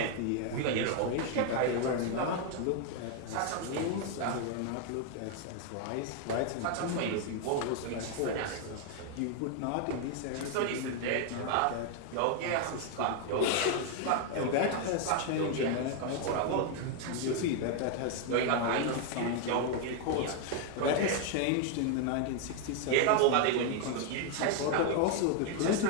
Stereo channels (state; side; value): different; both; correlation 0.00